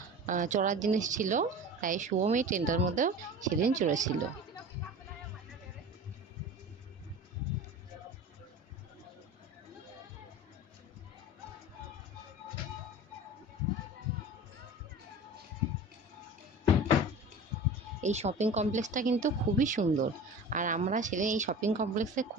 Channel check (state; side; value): normal; both; correlation 0.36